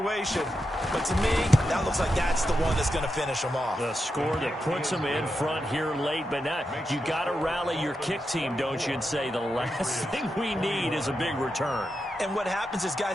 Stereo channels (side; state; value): both; normal; correlation 0.87